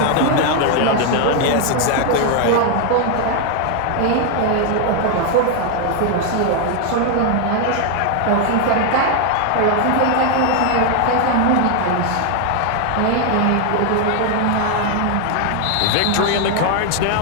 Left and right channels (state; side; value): different; both; correlation 0.00